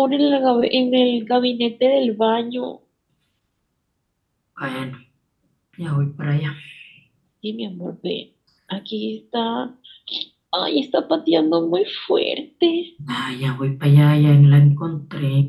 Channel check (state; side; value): identical; both; correlation 1.00